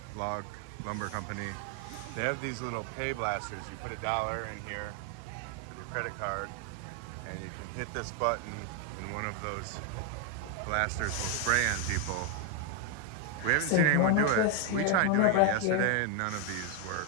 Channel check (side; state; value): both; different; correlation 0.01